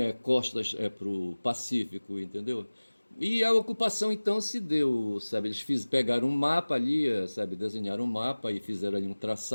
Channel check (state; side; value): inverted; both; correlation -1.00